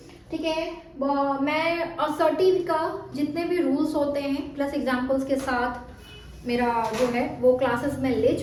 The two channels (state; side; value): identical; both; correlation 1.00